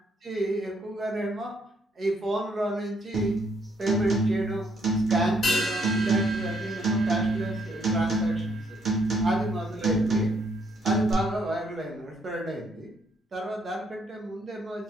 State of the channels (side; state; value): both; normal; correlation 0.71